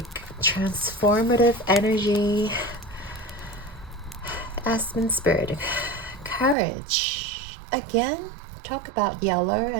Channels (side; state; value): left; drops out; at 6.6 s